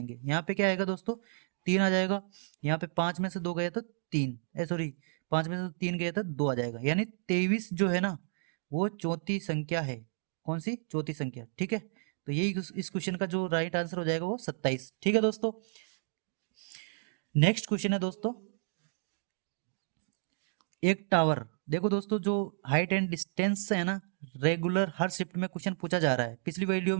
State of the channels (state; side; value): silent; left; digital silence